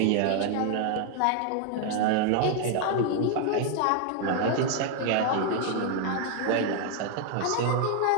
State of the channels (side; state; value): both; different; correlation 0.00